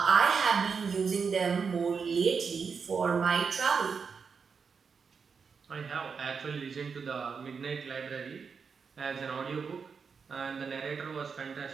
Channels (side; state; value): left; quieter; 5.7 dB